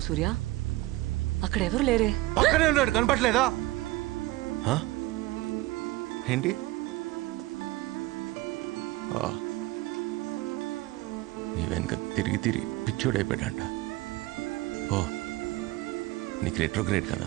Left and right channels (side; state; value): left; quieter; 18.7 dB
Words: సూర్య? అక్కడ ఎవరు లేరే. పక్కనే ఉన్నాడు, కనపట్లేదా? ఏంటి? నీ వెనక తిరిగి తిరిగి పిచ్చోడైపోయాడంట. ఓ నీకు రెట్రోగ్రేడ్ కదా,